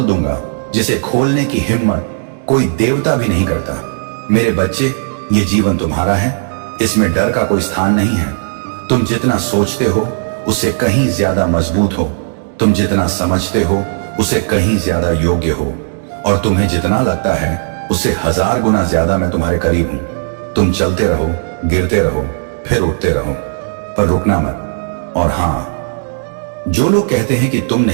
दूंगा जिसे खोलने की हिम्मत कोई देवता भी नहीं करता। मेरे बच्चे, ये जीवन तुम्हारा है, इसमें डर का कोई स्थान नहीं है। तुम जितना सोचते हो उससे कहीं ज्यादा मजबूत हो। तुम जितना समझते हो उससे कहीं ज्यादा योग्य हो। और तुम्हें जितना लगता है उससे 1000 गुना ज्यादा मैं तुम्हारे करीब हूं। तुम चलते रहो, गिरते रहो, फिर उठते रहो, पर रुकना मत। और हां, जो लोग कहते हैं कि तुम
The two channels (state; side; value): silent; left; digital silence